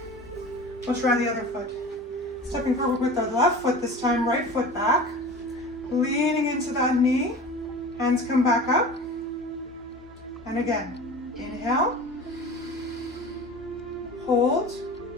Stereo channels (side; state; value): both; normal; correlation 0.37